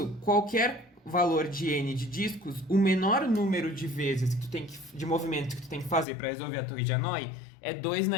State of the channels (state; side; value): drops out; right; at 6.1 s